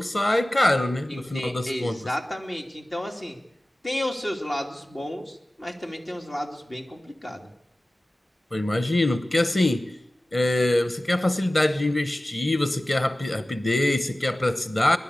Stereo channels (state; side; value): normal; both; correlation 0.97